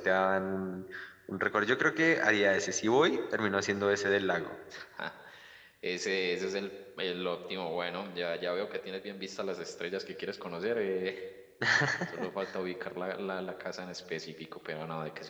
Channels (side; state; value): both; identical; correlation 1.00